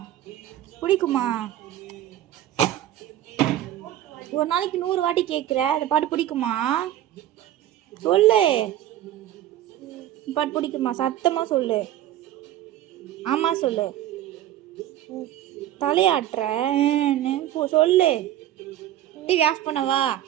பிடிக்குமா? ஒரு நாளைக்கு 100 வாட்டி கேட்குற. இந்த பாட்டு பிடிக்குமா? சொல்லு, இந்த பாட்டு பிடிக்குமா? சத்தமா சொல்லு. ஆமா சொல்லு. தலையாட்டுற சொல்லு. டிவி ஆஃப் பண்ணவா?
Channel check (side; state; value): left; quieter; 12.7 dB